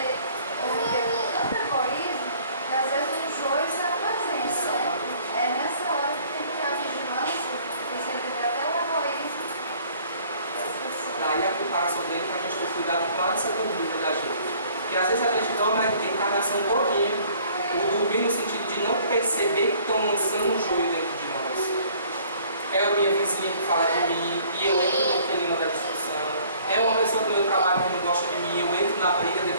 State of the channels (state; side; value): inverted; both; correlation -0.56